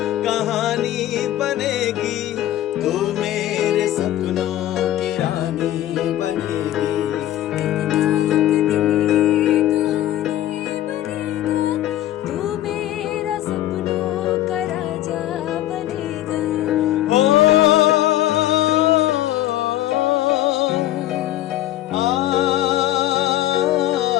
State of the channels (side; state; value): right; quieter; 13.6 dB